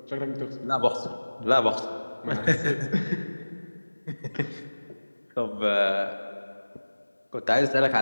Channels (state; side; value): inverted; both; correlation -1.00